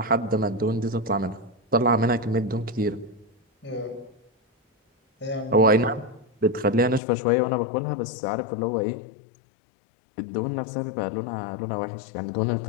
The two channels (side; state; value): right; drops out; at 7.0 s